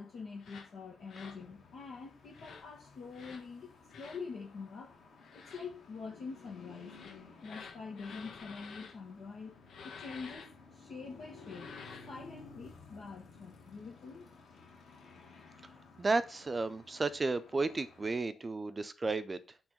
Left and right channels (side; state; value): both; normal; correlation 0.89